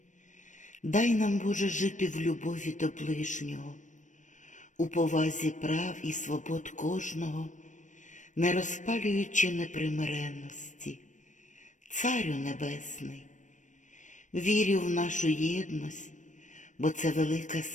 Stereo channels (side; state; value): right; late; 0.36 ms